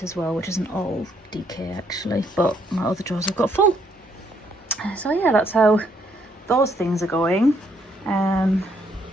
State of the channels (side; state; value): both; normal; correlation 0.70